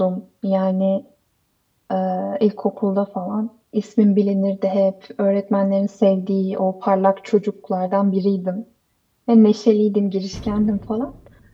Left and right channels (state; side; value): identical; both; correlation 1.00